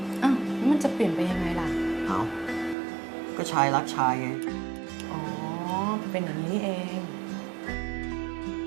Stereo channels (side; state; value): left; drops out; at 2.8 s